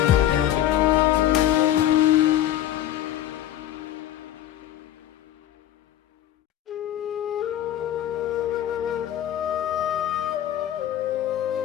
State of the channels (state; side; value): quieter; right; 12.1 dB